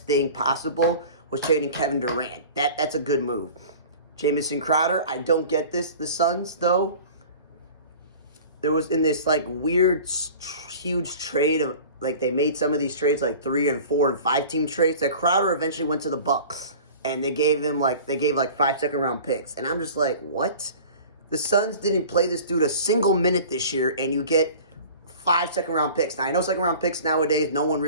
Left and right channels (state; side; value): inverted; both; correlation -0.41